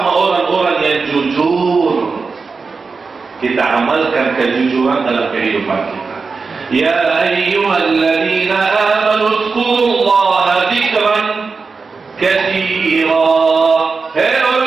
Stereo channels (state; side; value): quieter; left; 4.6 dB